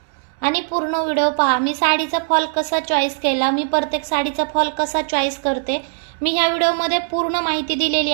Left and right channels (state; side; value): silent; left; 66 dB below the other